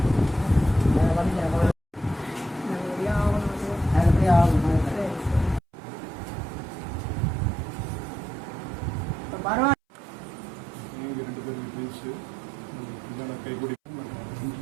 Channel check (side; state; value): left; drops out; at 5.6 s